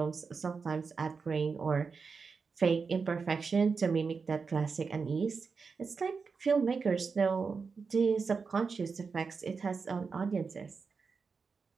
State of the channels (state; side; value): quieter; left; 5.1 dB